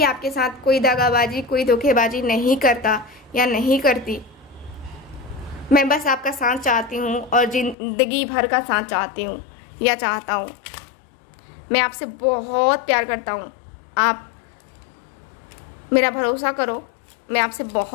आपके साथ कोई दगाबाजी, कोई धोखेबाजी नहीं करता या नहीं करती। मैं बस आपका साथ चाहती हूँ और जिंदगी भर का साथ चाहती हूँ या चाहता हूँ। मैं आपसे बहुत प्यार करता हूँ, आप मेरा भरोसा करो, मैं आपसे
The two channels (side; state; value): right; drops out; at 7.8 s